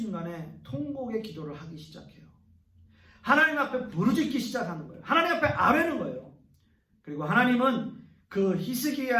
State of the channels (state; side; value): identical; both; correlation 1.00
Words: 통곡의 기도를 하기 시작해요. 하나님 앞에 부르짖기 시작하는 거예요. 하나님 앞에 아뢰는 거예요. 그리고 하나님은 그